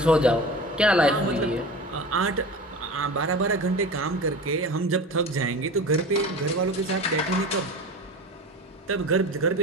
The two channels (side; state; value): both; normal; correlation 0.33